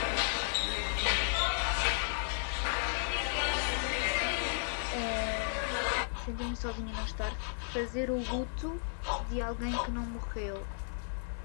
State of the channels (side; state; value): right; silent; 55 dB below the other